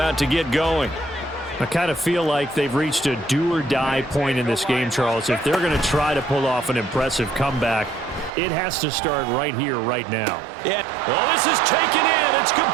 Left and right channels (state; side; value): drops out; left; at 8.3 s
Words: to get going. I kind of feel like they've reached a do-or-die point in this game, Charles. If they're going to try to pull off an impressive comeback, it has to start right here, right now. Yeah. Oh, this is taken in. It's